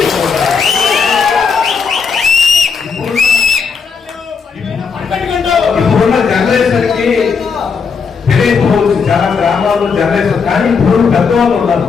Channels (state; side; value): quieter; right; 5.7 dB